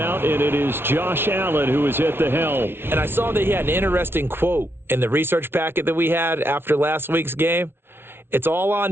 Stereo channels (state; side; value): late; left; 0.11 ms